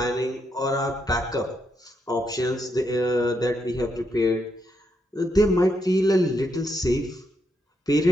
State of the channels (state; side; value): normal; both; correlation 0.80